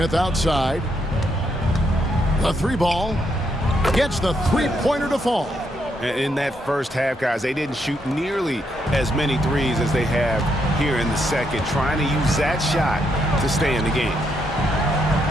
outside. The 3 ball gets the 3-pointer to fall. In that first half, guys, they didn't shoot nearly as many threes as they have here in the second, trying to use that shot to stay in the game.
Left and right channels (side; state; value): both; normal; correlation 0.77